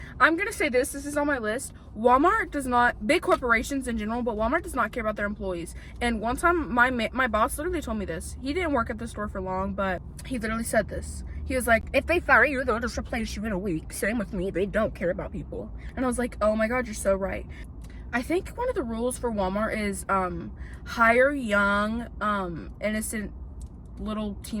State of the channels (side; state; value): both; identical; correlation 1.00